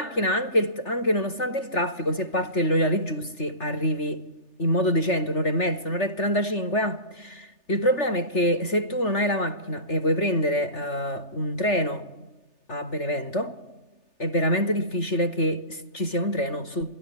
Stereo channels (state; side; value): late; right; 3.4 ms